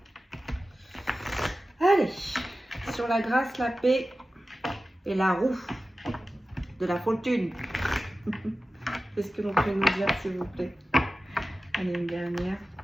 Allez, sur la grâce, la paix et la roue de la fortune. Qu'est-ce que l'on peut nous dire, s'il vous plaît? Allez, une dernière.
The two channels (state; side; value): normal; both; correlation 0.95